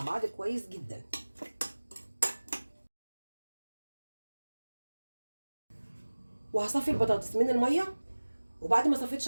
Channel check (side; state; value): both; inverted; correlation -1.00